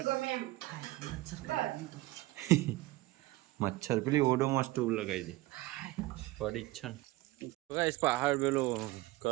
મચ્છર પેલી ઓડોમાં સ્ટોવ લગાવી દે પડી જ છે ને ગાઈસ પહાડ પેલો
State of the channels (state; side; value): quieter; left; 18.8 dB